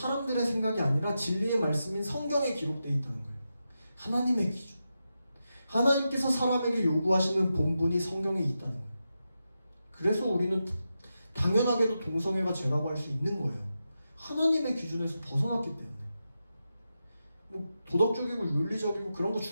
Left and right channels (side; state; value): both; inverted; correlation -0.89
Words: 생각이 아니라 진리의 말씀인 성경에 기록되어 있다는 거예요. 하나님의 기준. 하나님께서 사람에게 요구하시는 본분이 성경에 있다는 거예요. 그래서 우리는 당연하게도 동성애가 죄라고 할 수 있는 거예요. 하나님의 기준에서 벗어났기 때문에. 뭐 도덕적이고 윤리적이고 그런 거